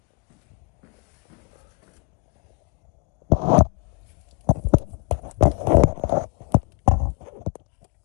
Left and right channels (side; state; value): right; quieter; 29.5 dB